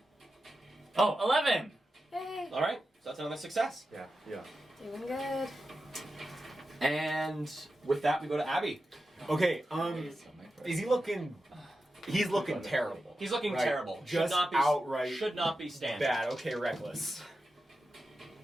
Oh, 11. Hey. All right, so that's another success. Yeah. Yeah. Doing good. And with that, we go to Abby. Okay, is he looking... He's looking terrible. He's looking Right. terrible. Just outright Should not be standing. bad. Okay, reckless.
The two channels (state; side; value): normal; both; correlation 0.91